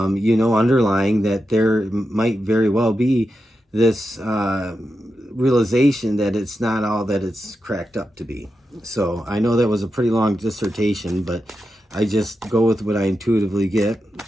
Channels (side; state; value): both; normal; correlation 0.89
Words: know, underlying that there might very well be this realization that it's not all that it's cracked up to be. So I know that was a pretty long dissertation, but I just go with what I intuitively get.